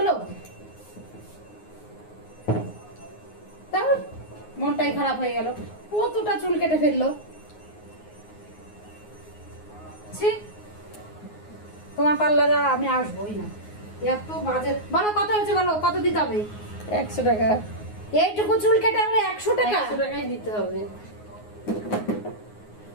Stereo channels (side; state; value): right; late; 9.5 ms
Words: তারপর মনটাই খারাপ হয়ে গেল, কতটা চুল কেটে ফেললো। তোমার পার্লারে আমি আসবোই না, এত বাজে। বলো কত হয়েছে, বলো কত দিতে হবে? 100 টাকা। এইটুকু চুল কেটে আমরা 100 টাকা? 100 টাকাই দিতে হবে।